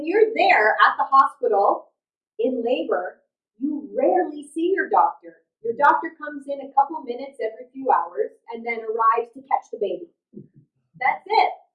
you're there at the hospital in labor, you rarely see your doctor. Your doctor comes in a couple minutes every few hours and then arrives to catch the baby. That's it.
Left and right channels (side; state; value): both; identical; correlation 1.00